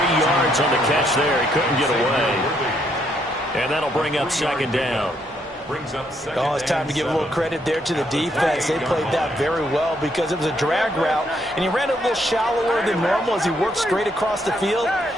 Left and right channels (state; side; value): normal; both; correlation 0.73